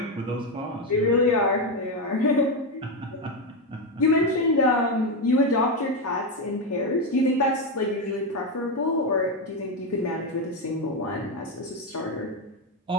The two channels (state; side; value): normal; both; correlation 0.09